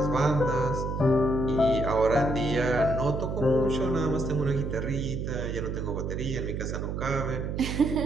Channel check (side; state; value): right; noise; hum, 3 dB below the sound